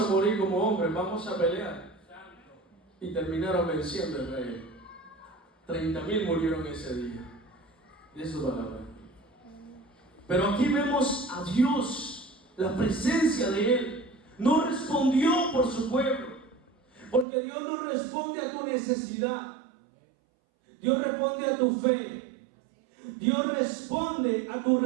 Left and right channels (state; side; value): drops out; left; at 17.2 s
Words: morir como hombres, vamos a pelear. Y terminaron venciendo el rey. 30,000 murieron ese día. De su palabra. Pero aquí vemos a Dios, la presencia de Él. No respondió por su pueblo. Porque Dios no responde a tu necesidad. Dios responde a tu fe. Dios responde a tu